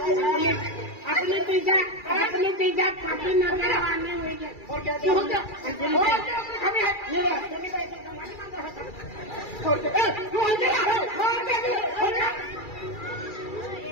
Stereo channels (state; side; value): late; right; 2.3 ms